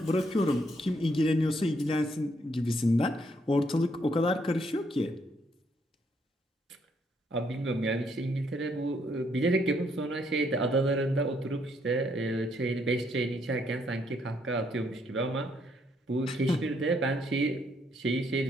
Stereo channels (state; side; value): normal; both; correlation 0.72